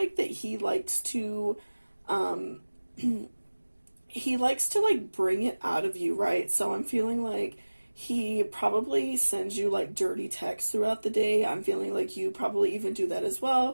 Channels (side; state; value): both; inverted; correlation -1.00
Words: that he likes to he likes to like bring it out of you, right? So I'm feeling like he probably sends you like dirty texts throughout the day. I'm feeling like you probably even do that as